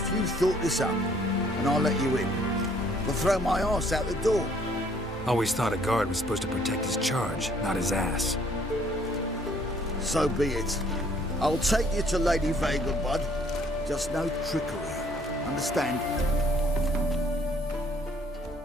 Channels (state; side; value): normal; both; correlation 0.62